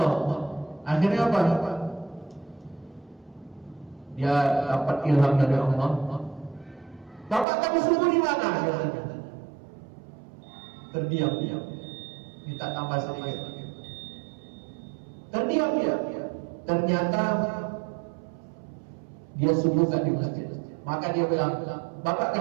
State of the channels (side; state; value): left; drops out; at 7.5 s